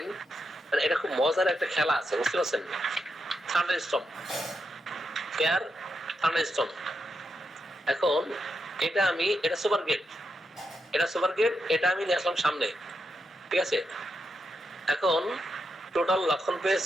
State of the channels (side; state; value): both; normal; correlation 0.84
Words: এটা খুব মজার একটা খেলা আছে, বুঝতে পারছেন? Air thunderstorm. এখন এটা সুপার গেট, এটা আমি নিয়ে আসলাম সামনে, ঠিক আছে। এখন টোটাল লক্ষণ